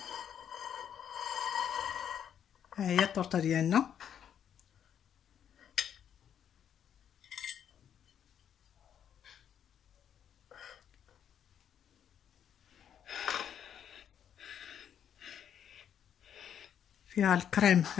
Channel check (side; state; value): right; quieter; 9.0 dB